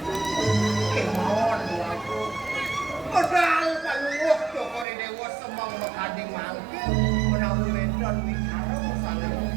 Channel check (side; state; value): left; drops out; at 4.9 s